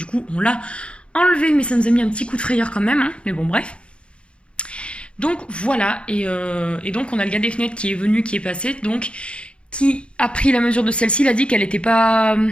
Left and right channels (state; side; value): late; right; 0.058 ms